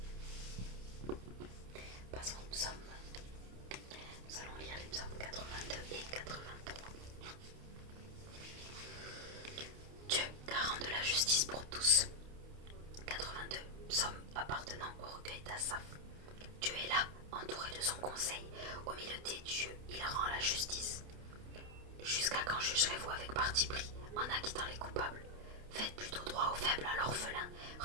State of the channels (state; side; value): late; left; 29 ms